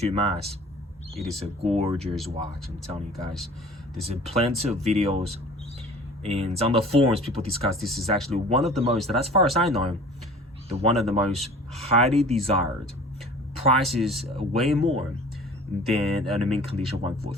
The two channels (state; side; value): normal; both; correlation 0.45